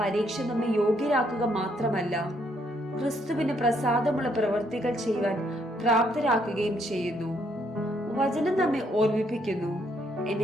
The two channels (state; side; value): normal; both; correlation 0.71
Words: പരീക്ഷ നമ്മെ യോഗ്യരാക്കുക മാത്രമല്ല, ക്രിസ്തുവിന് പ്രസാദമുള്ള പ്രവൃത്തികൾ ചെയ്യുവാൻ പ്രാപ്തരാക്കുകയും ചെയ്യുന്നു. വചനം നമ്മെ ഓർമ്മിപ്പിക്കുന്നു,